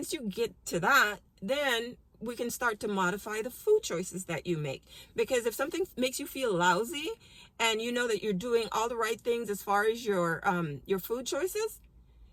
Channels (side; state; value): both; identical; correlation 1.00